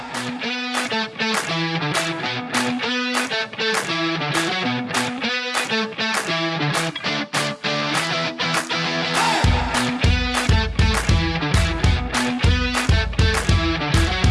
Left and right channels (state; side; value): identical; both; correlation 1.00